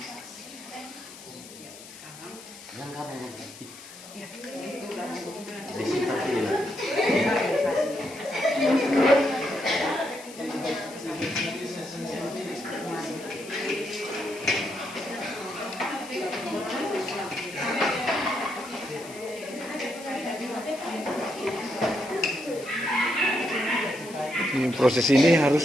Yang kamu disimpan sini. Ini proses ini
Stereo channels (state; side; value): noise; left; hiss, 17 dB below the sound